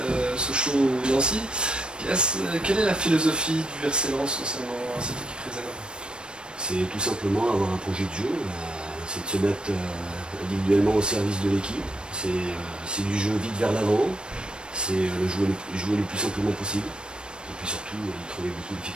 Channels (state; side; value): late; left; 0.053 ms